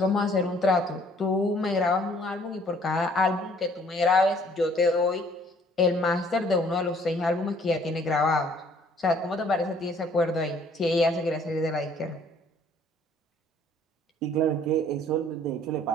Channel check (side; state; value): both; normal; correlation 0.59